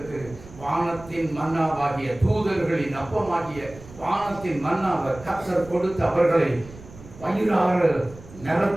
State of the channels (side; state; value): right; noise; rumble, 18 dB below the sound